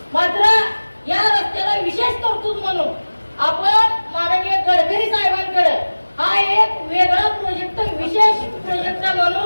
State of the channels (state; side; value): inverted; both; correlation -1.00